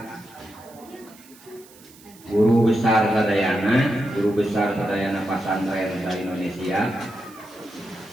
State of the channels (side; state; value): right; noise; hiss, 24 dB below the sound